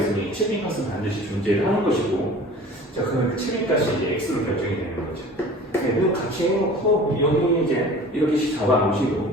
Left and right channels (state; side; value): normal; both; correlation 0.43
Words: 7인까지는 반드시 존재를 하는 것이고, 자 그러면 그 7인까지 이제 x로 결정이 되는 거죠. 네, 그럼 같이 해놓고 여기 이제 이렇게